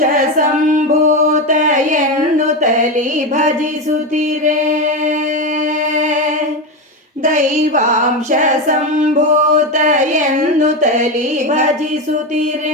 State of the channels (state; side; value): normal; both; correlation 0.15